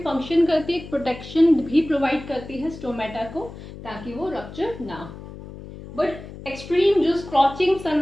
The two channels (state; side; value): noise; left; hum, 14 dB below the sound